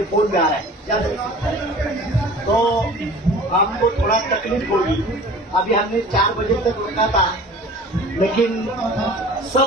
फोन में आ रहा है, याद है। तो आपको थोड़ा तकलीफ होगी। अभी हमने 4 बजे तक रुका था, लेकिन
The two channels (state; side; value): normal; both; correlation 0.43